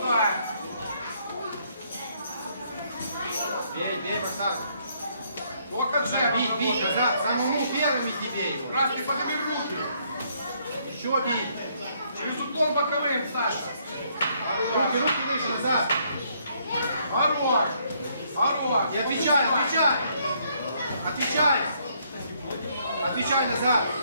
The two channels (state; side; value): inverted; both; correlation -0.69